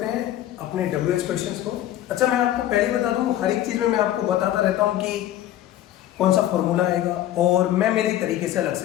हैं अपने WH क्वेश्चंस को। अच्छा, मैं आपको पहले बता दूं, हर एक चीज में मैं आपको बताता रहता हूं कि कौन सा फॉर्मूला आएगा और मैं मेरे तरीके से अलग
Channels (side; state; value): right; quieter; 12.8 dB